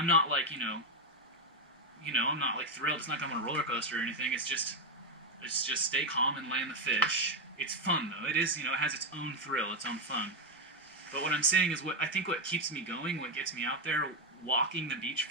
not like, I'm not like thrilled. It's not like I'm on a roller coaster or anything. It's just stay calm and land the fish. It's fun though. It is, it has its own thrill, its own fun. But what I'm saying is what keeps me going, what gets me out there, walking the beach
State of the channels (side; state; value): both; normal; correlation 0.05